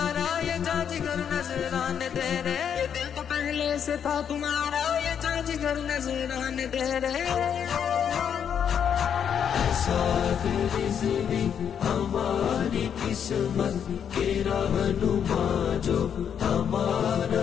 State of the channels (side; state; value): right; quieter; 8.1 dB